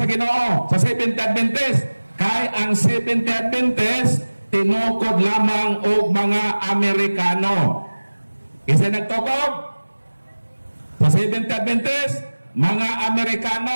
Ginoo sa Seventh Day Adventist? Kay ang Seventh Day Adventist tinukod lamang og mga Amerikano. Isa nagtukod sa Seventh Day Adventist, mga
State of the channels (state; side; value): inverted; both; correlation -1.00